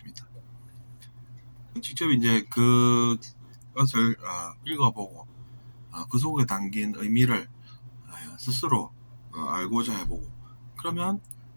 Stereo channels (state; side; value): inverted; both; correlation -1.00